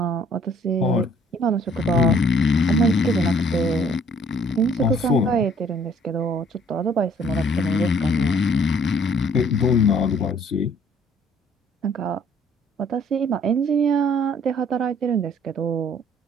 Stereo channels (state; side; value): normal; both; correlation 0.59